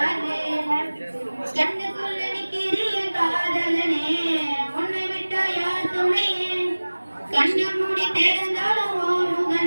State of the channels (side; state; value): both; inverted; correlation -1.00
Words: கண்ணுக்குள்ள நிக்கிறிய காதலனே உன்னை விட்டா யார் துணையே. கண்ண மூடி திறந்தாலும்